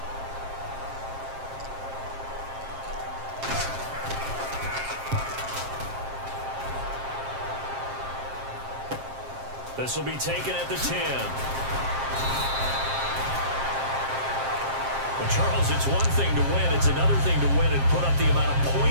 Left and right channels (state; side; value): late; left; 7.5 ms